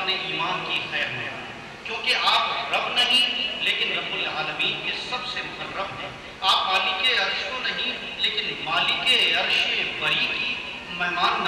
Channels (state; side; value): identical; both; correlation 1.00